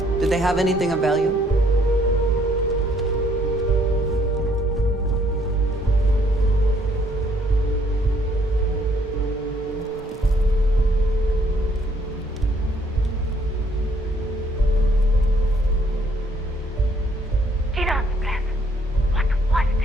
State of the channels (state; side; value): normal; both; correlation 0.66